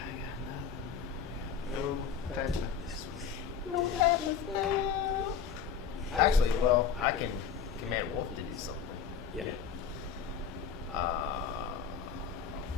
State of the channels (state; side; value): quieter; right; 7.1 dB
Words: No badness. No badness now. Actually, well, I can command Wolf to do something. Yeah.